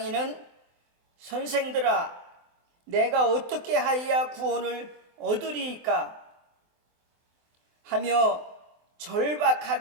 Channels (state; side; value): late; left; 24 ms